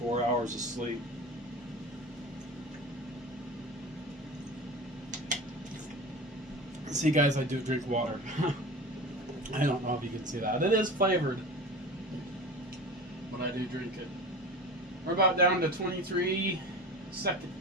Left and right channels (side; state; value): both; normal; correlation 0.33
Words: hours of sleep. See, guys, I do drink water. I don't know if you can see that. It is flavored, but I do drink it. We're about down to 23